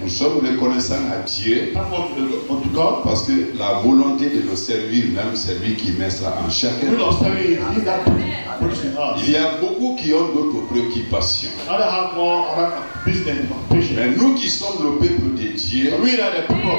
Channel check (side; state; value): both; inverted; correlation -1.00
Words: Nous sommes reconnaissants à Dieu parce que la volonté de le servir même, c'est lui qui met ça en chacun. Il y a beaucoup qui ont d'autres préoccupations. Mais nous qui sommes le peuple de Dieu,